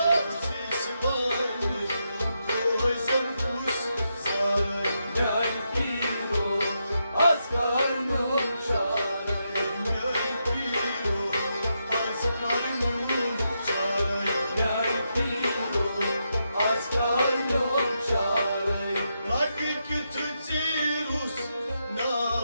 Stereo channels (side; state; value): both; inverted; correlation -0.83